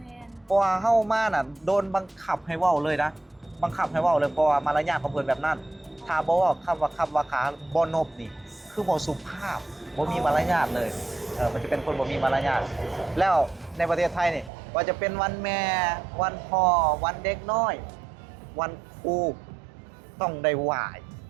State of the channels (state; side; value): drops out; left; at 14.5 s